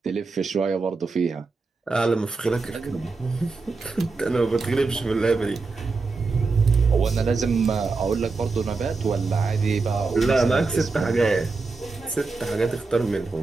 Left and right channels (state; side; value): quieter; left; 4.1 dB